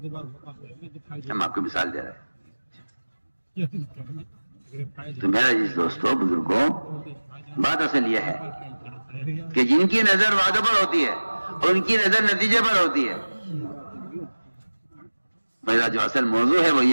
ہم آپ کو مثال دے رہے ہیں۔ تو میرا جس دوستوں بزرگوں بات اصل یہ ہے کہ جن کی نظر وعدوں پر ہوتی ہے ان کی نظر نتیجے پر ہوتی ہے. میرا جو اصل موضوع ہے وہ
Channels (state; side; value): inverted; both; correlation -1.00